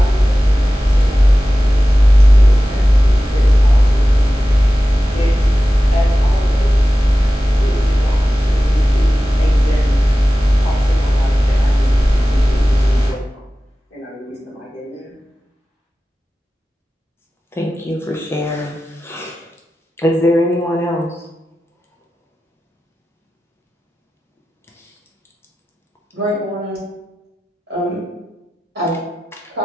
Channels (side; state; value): both; normal; correlation 0.95